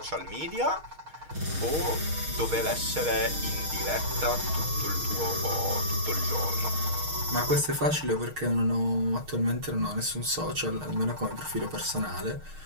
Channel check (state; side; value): late; left; 6.4 ms